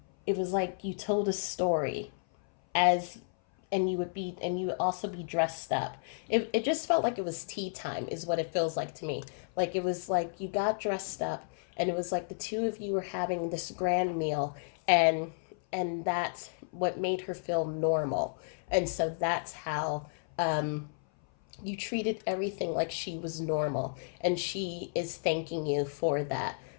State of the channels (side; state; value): right; silent; 56 dB below the other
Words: you told a story as and you would also be dressed up. It just felt like it was tea time is what it feels like to me. Like it was like you got dressed up, and it was like the two of you were having this grand meal, and that's what made her feel normal. And so that's how you treated everything like she was normal, and she is thanking you for that.